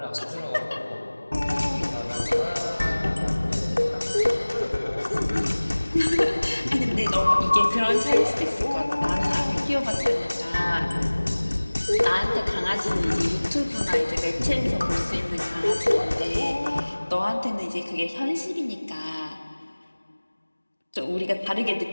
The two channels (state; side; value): inverted; both; correlation -1.00